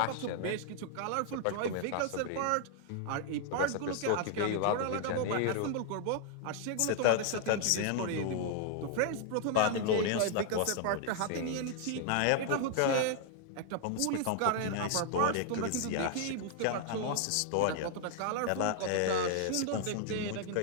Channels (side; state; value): both; different; correlation 0.00